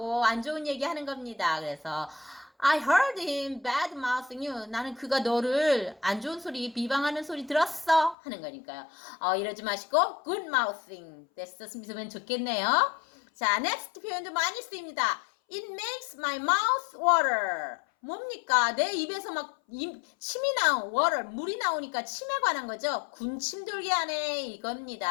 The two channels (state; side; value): drops out; right; at 8.2 s